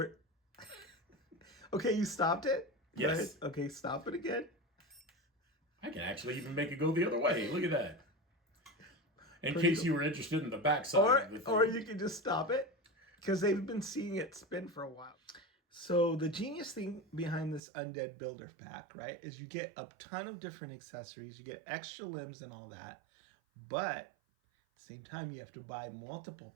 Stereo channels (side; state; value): left; drops out; at 17.6 s